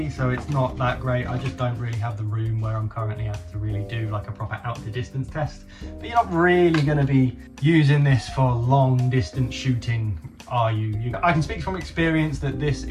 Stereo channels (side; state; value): both; identical; correlation 1.00